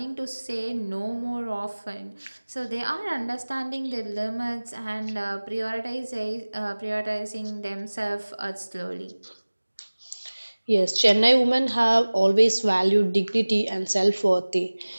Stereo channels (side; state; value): both; inverted; correlation -1.00